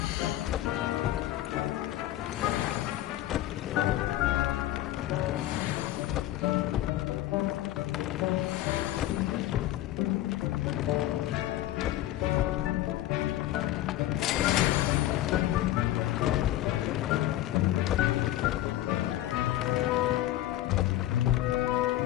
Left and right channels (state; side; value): quieter; right; 14.4 dB